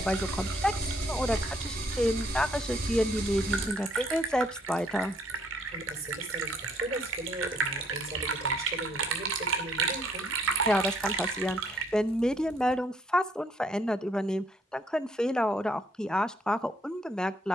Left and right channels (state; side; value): normal; both; correlation 0.67